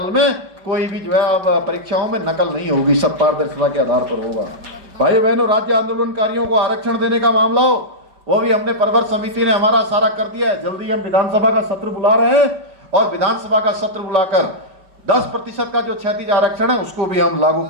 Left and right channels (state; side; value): late; left; 5.2 ms